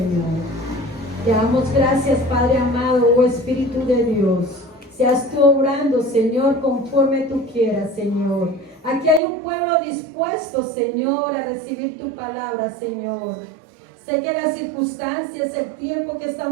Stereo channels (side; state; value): left; drops out; at 9.2 s